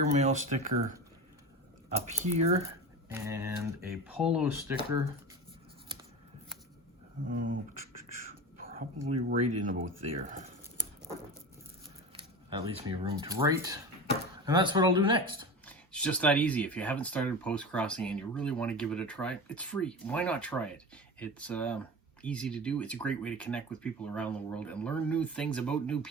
sticker up here and a polo sticker. Probably right in about there. That leaves me room to write. And that's what I'll do next. It's just that easy. If you haven't started Postcrossing and you really want to give it a try, it's free. Why not try it? It's easy to do. It's a great way to connect with people around the world and learn new things about new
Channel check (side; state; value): both; normal; correlation 0.29